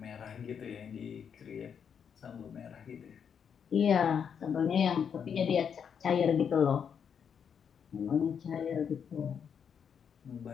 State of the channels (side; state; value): right; quieter; 7.4 dB